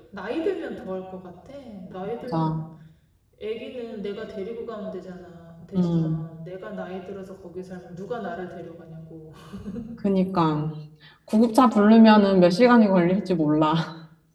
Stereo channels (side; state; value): both; identical; correlation 1.00